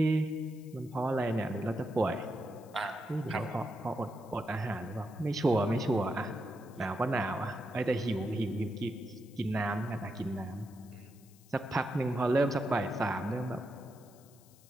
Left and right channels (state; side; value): noise; left; hiss, 26 dB below the sound